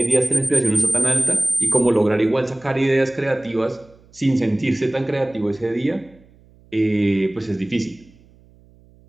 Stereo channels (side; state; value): right; noise; hum, 28 dB below the sound